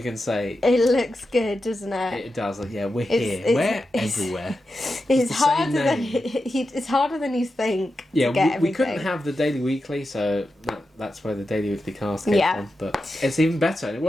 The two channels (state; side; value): normal; both; correlation 0.90